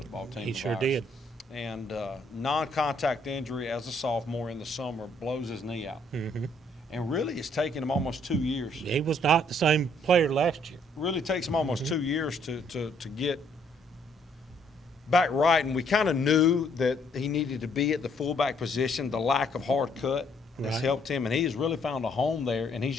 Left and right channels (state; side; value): normal; both; correlation 0.67